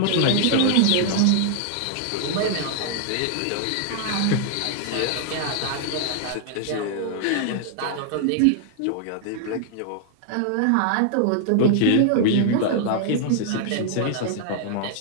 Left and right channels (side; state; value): both; different; correlation -0.01